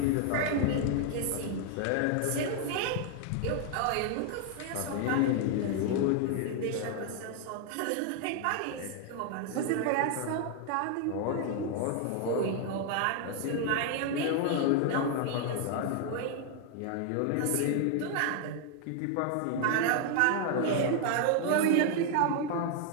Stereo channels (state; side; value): different; both; correlation 0.00